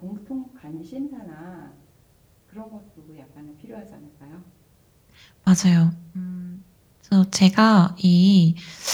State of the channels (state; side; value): identical; both; correlation 1.00